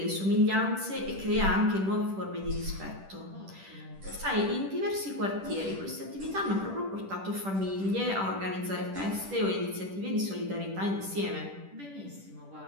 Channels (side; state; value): left; late; 10 ms